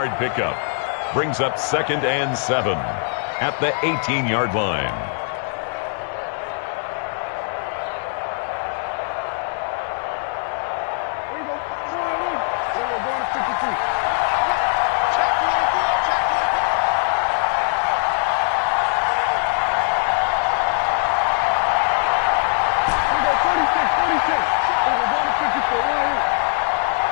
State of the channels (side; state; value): right; silent; 59 dB below the other